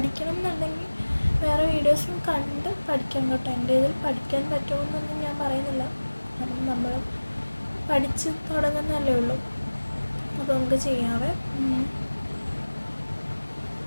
എന്നുണ്ടെങ്കിൽ വേറെ വീഡിയോസും കണ്ട് പഠിക്കാം കേട്ടോ. എൻ്റെ ഇതിൽ പഠിക്കാൻ പറ്റുമെന്നൊന്നും ഞാൻ പറയുന്നില്ല, കാരണം നമ്മൾ പഠിച്ച് തുടങ്ങുന്നതല്ലേ ഉള്ളൂ. അപ്പോൾ നമുക്ക് ചെയ്യാവേ.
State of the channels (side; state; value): both; inverted; correlation -1.00